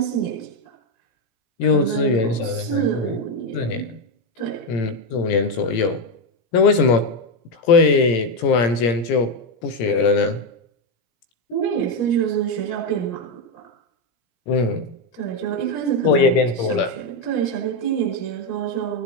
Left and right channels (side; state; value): right; late; 17 ms